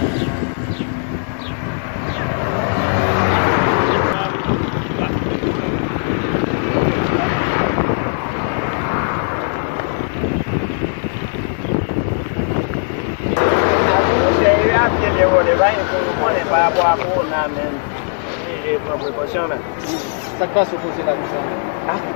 vrai. On n'est pas à boire pour on a même. J'ai pris précaution. Ça passe au conseil là, ça. Ah,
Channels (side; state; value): right; silent; 67 dB below the other